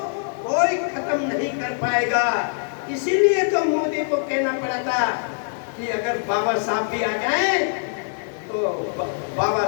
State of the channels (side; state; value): right; silent; 59 dB below the other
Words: कोई खत्म नहीं कर पाएगा। इसीलिए तो मोदी को कहना पड़ा था कि अगर बाबा साहब भी आ जाए तो बाबा